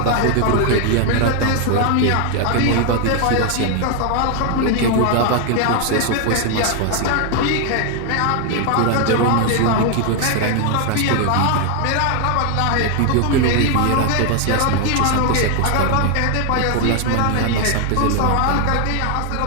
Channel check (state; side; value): different; both; correlation 0.00